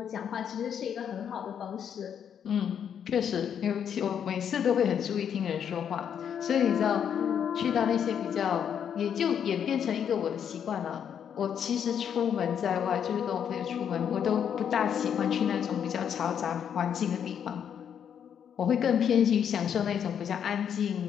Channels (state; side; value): quieter; right; 8.4 dB